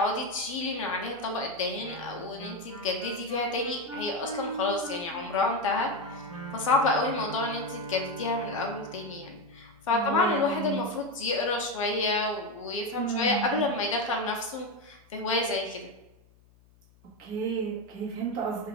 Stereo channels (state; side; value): noise; left; hum, 29 dB below the sound